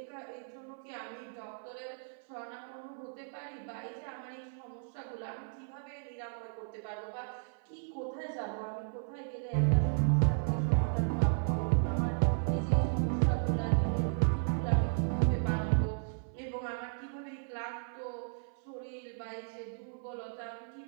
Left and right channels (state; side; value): silent; left; 55 dB below the other